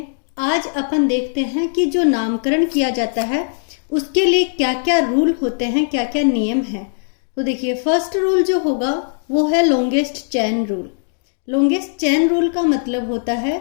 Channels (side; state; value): right; silent; digital silence